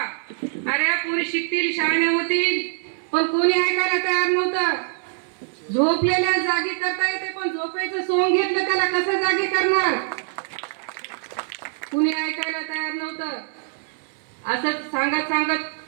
अरे पोरी शिकतील शाळेने होतील पण कोणी ऐकायला तयार नव्हतं. झोपलेल्या जागी करता येते पण झोपेचं सोंग घेतलं त्याला कसं जागी करणार. कुणी ऐकायला तयार नव्हतं. असं सांगत सांगत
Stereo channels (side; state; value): left; silent; 58 dB below the other